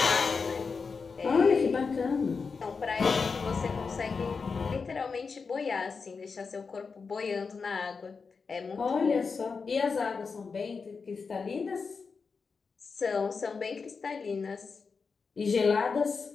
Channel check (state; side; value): quieter; right; 5.0 dB